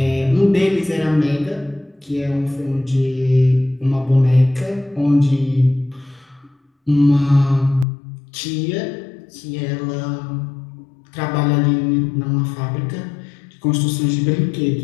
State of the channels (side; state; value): right; drops out; at 7.9 s